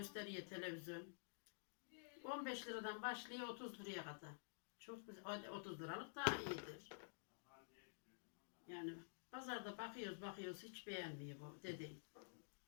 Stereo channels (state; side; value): silent; right; digital silence